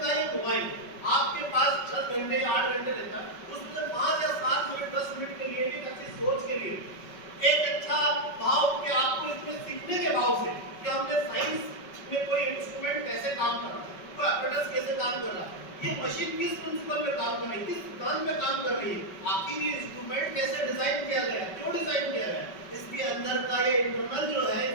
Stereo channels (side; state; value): right; late; 5.3 ms